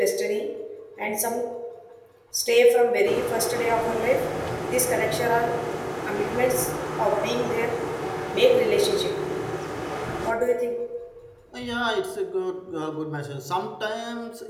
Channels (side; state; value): both; identical; correlation 1.00